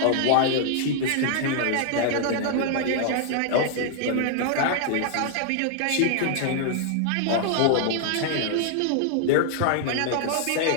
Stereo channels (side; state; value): both; different; correlation 0.00